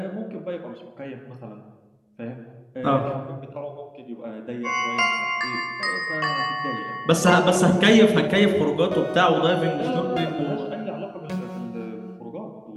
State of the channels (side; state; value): both; identical; correlation 1.00